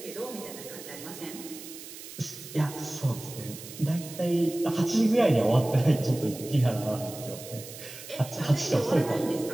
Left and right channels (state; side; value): noise; right; hiss, 14 dB below the sound